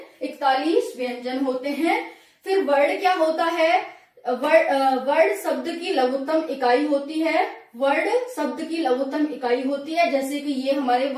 41 व्यंजन होते हैं। फिर वर्ण क्या होता है? वर्ण शब्द की लघुत्तम इकाई होती है। वर्ण शब्द की लघुत्तम इकाई होती है, जैसे कि ये हमारे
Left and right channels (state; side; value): identical; both; correlation 1.00